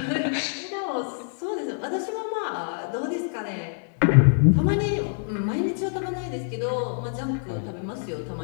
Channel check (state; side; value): silent; right; digital silence